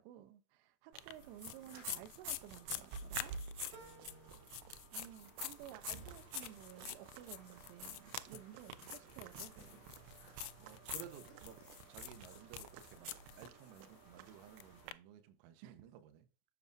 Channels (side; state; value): left; late; 31 ms